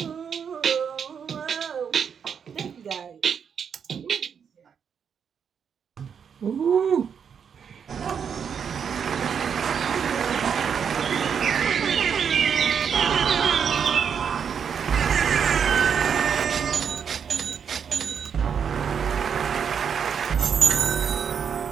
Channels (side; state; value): left; quieter; 7.2 dB